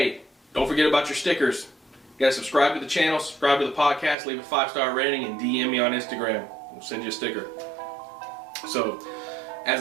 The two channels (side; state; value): left; drops out; at 4.2 s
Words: don't forget about your stickers. You gotta subscribe to the channel, subscribe to the podcast, leave a 5-star rating, and DM me on Instagram. We'll send you a sticker. So,